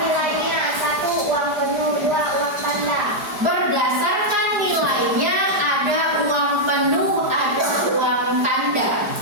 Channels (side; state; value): left; late; 4.9 ms